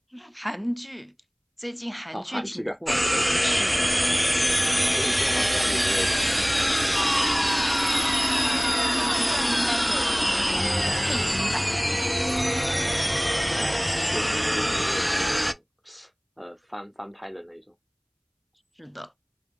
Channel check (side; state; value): both; identical; correlation 1.00